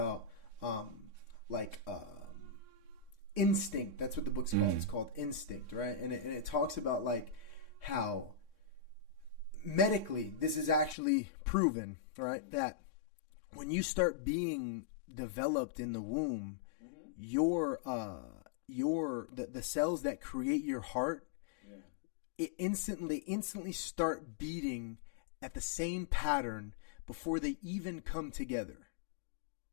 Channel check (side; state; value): right; drops out; at 11.0 s